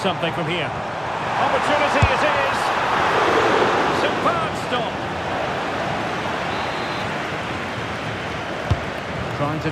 from here? Opportunity it is. Superb stop. Trying to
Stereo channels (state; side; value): identical; both; correlation 1.00